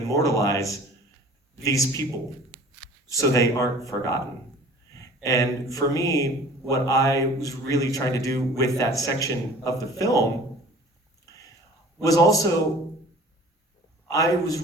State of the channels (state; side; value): normal; both; correlation 0.46